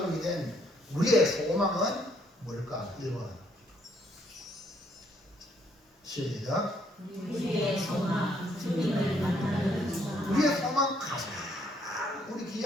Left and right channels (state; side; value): normal; both; correlation 0.69